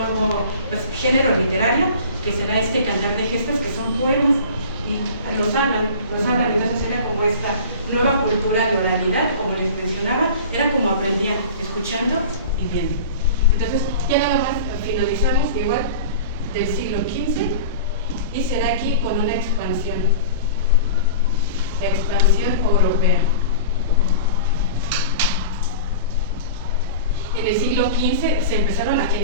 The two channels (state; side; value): inverted; both; correlation -0.37